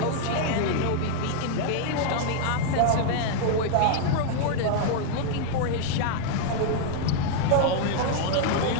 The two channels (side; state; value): both; different; correlation 0.00